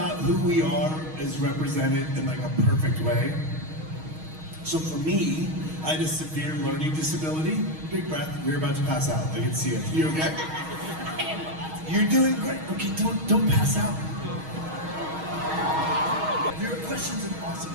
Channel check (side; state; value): left; late; 6.4 ms